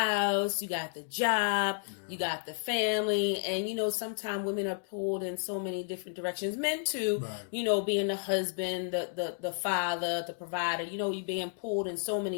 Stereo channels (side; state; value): right; silent; 56 dB below the other